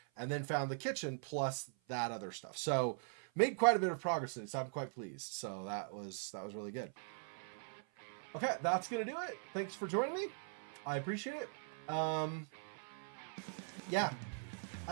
and then found the kitchen plus that other stuff. So made quite a bit of progress in it, so I'm quite pleased. So that was really good. Okay, that's going to do it. Thanks for joining me. I appreciate it. Yeah,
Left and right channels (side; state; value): left; silent; 50 dB below the other